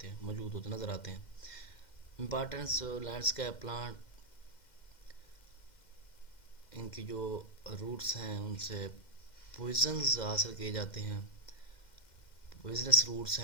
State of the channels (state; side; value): late; right; 2.1 ms